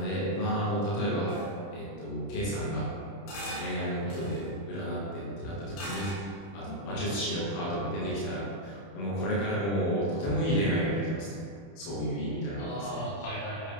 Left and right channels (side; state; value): right; late; 30 ms